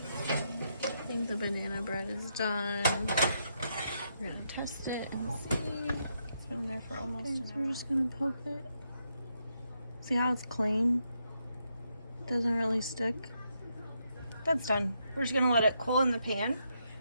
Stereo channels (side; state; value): both; inverted; correlation -0.79